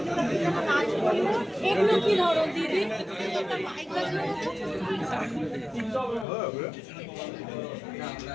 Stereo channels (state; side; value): drops out; right; at 6.2 s